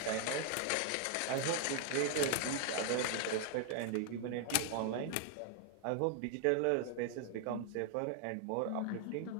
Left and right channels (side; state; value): both; different; correlation 0.00